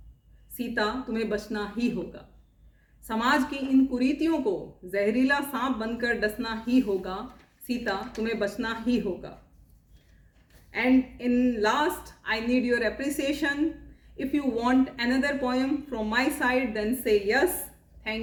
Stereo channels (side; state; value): both; identical; correlation 1.00